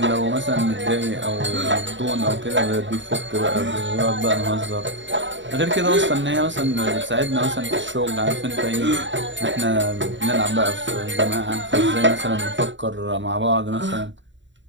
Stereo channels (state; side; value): late; left; 0.54 ms